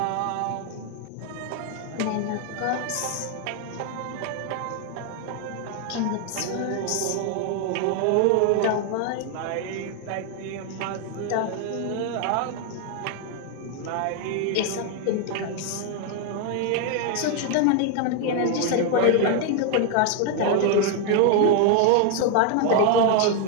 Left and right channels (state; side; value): different; both; correlation 0.01